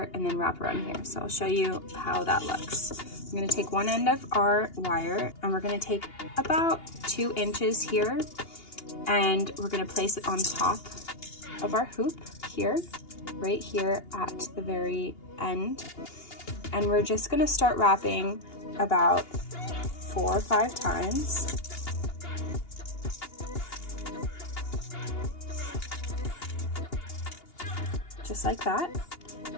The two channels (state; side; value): late; right; 2.8 ms